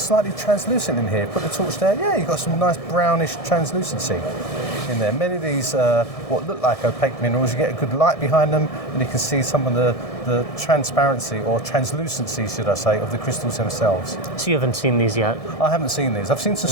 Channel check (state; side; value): late; right; 1.6 ms